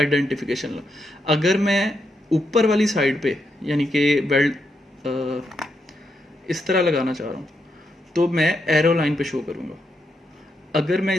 लाइन। अगर मैं ऊपर वाली साइड पे यानी कि वेल्ड इस तरह लगाना चाह रहा हूँ तो मैं एरो लाइन पे शो करूँगा। अगर मैं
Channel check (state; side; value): normal; both; correlation 0.82